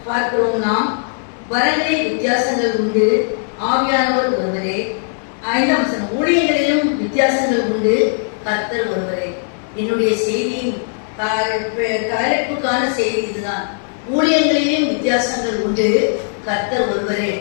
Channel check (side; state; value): right; silent; 67 dB below the other